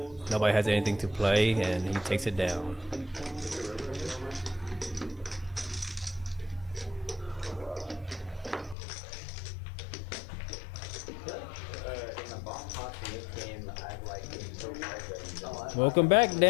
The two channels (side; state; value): right; drops out; at 8.8 s